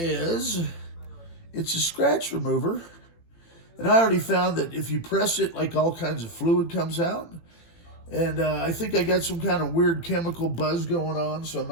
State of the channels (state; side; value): late; right; 18 ms